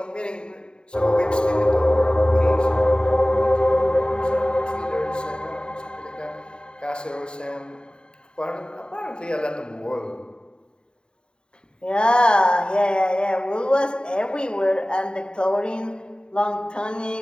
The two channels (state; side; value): late; right; 0.050 ms